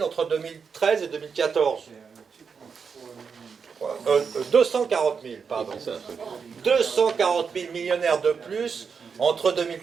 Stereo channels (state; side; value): quieter; left; 5.9 dB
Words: entre 2013 et 2014. 240 000, pardon. 240 000 millionnaires de plus entre